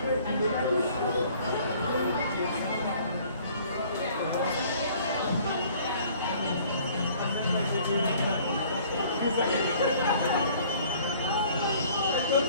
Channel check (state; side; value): inverted; both; correlation -0.55